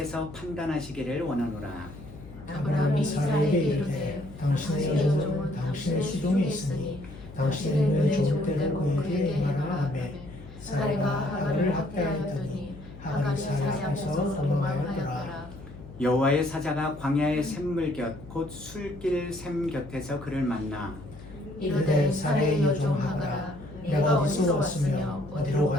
판단하시기를 원하노라. 아브라함이 사레에게 이르되 당신의 여종은 당신의 수종에 있으니 당신의 눈에 좋을 때를 그에게 행하라 하매 사레가 하갈을 학대하였더니 하갈이 사레 앞에서 도망하였더라. 여호와의 사자가 광야의 샘물 곁 곧 술길 샘 곁에서 그를 만나 이르되 사레의 여종 하갈아 내가 어디서 왔으며 어디로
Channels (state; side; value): noise; left; hum, 17 dB below the sound